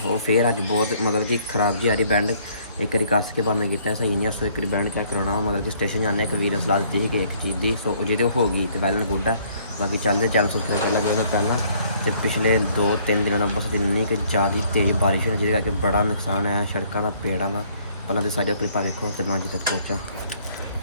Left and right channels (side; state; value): both; inverted; correlation -0.63